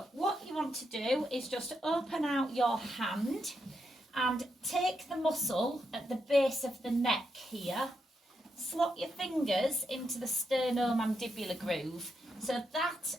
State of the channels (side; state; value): both; normal; correlation 0.83